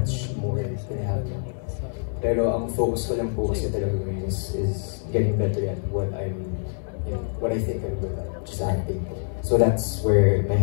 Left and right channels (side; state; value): right; silent; digital silence